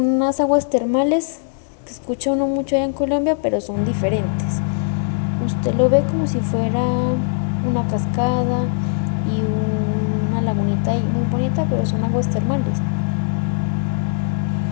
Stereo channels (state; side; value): silent; right; 66 dB below the other